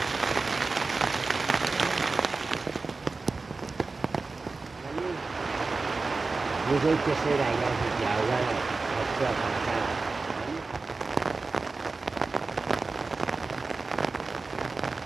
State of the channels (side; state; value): left; quieter; 3.9 dB